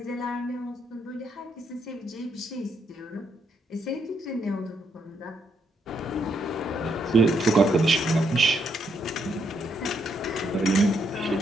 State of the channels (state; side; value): normal; both; correlation 0.76